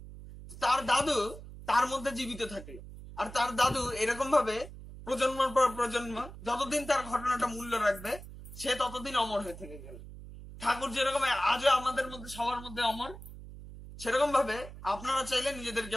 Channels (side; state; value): right; noise; hum, 14 dB below the sound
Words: তার দাদু তার মধ্যে জীবিত থাকে, আর তার দাদু এরকম ভাবে প্রজন্মের পর প্রজন্ম যতদিন তার ঘটনাটা মূল্য রাখবে, সে ততদিন অমর হয়ে থেকে গেল। ঠাকুর যেরকম আজও আমাদের মধ্যে সবার মধ্যে অমর, সেরকম ভাবে আপনারা চাইলে নিজেদেরকে